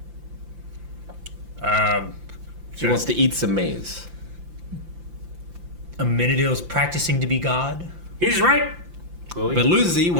She wants to eat some maize. Amenadiel's practicing to be God. He's right. Well, But Lucy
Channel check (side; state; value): left; late; 5.8 ms